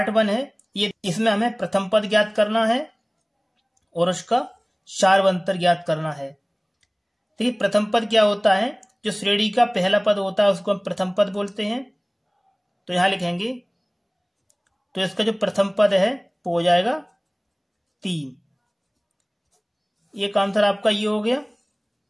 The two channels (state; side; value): identical; both; correlation 1.00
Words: 1 है ये इसमें हमें प्रथम पद ज्ञात करना है और उसका सारवंतर ज्ञात करना है। देखिए प्रथम पद क्या होता है, जो श्रेणी का पहला पद होता है उसको हम प्रथम पद बोलते हैं। तो यहां लिखेंगे, तो इसका जो प्रथम पद है वो हो जाएगा 3। एक आंसर आपका ये हो गया।